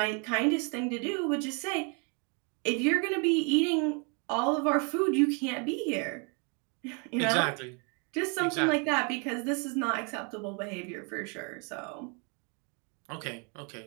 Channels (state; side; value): quieter; left; 35.8 dB